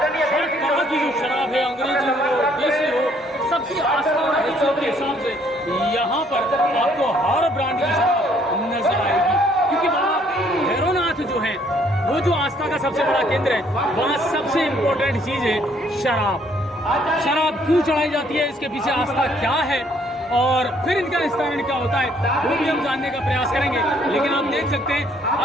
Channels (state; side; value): normal; both; correlation 0.64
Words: तरह की जो शराब है, अंग्रेजी हो देसी हो, सबकी आस्था और हैसियत के हिसाब से यहाँ पर आपको हर ब्रांड की शराब नजर आएगी। क्योंकि बाबा भैरवनाथ जो है वो जो आस्था का सबसे बड़ा केंद्र है, वहाँ सबसे इम्पोर्टेंट चीज़ है शराब। शराब क्यों चढ़ाई जाती है, इसके पीछे आस्था क्या है और फिर इनका निस्तारण क्या होता है, वो भी हम जानने का प्रयास करेंगे। लेकिन आप देख सकते हैं